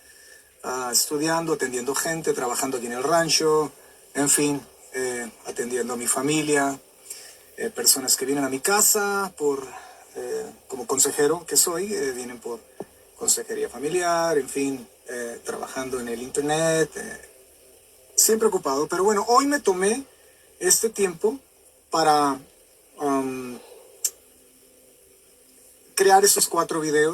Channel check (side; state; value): both; identical; correlation 1.00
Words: estudiando, atendiendo gente, trabajando aquí en el rancho, en fin, atendiendo a mi familia, personas que vienen a mi casa como consejero que soy, vienen por consejería familiar, en fin, trabajando en el internet, siempre ocupado. Pero bueno, hoy me tomé este tiempo para um, crear esos 4